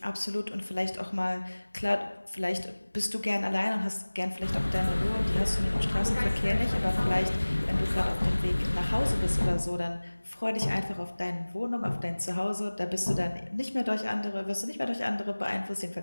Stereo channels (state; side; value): inverted; both; correlation -1.00